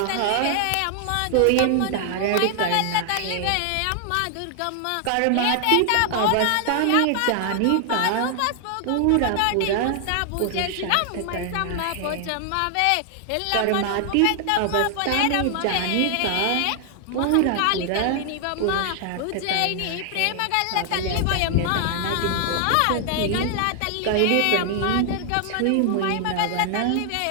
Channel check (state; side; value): different; both; correlation 0.00